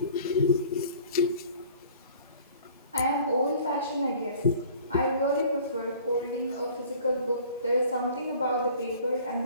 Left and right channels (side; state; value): both; inverted; correlation -0.49